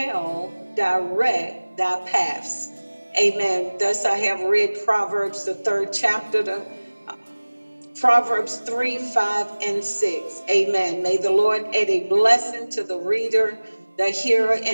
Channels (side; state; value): both; inverted; correlation -1.00